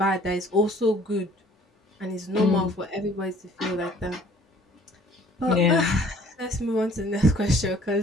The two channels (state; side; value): normal; both; correlation 0.55